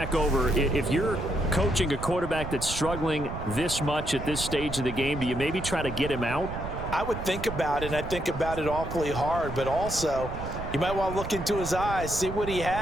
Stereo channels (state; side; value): noise; right; rumble, 8 dB below the sound